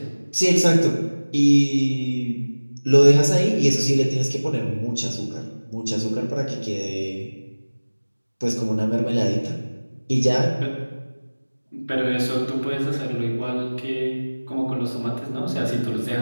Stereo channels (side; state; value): both; inverted; correlation -1.00